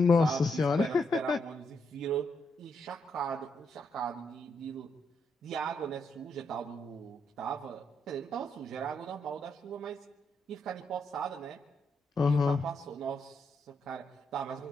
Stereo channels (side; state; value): both; normal; correlation 0.79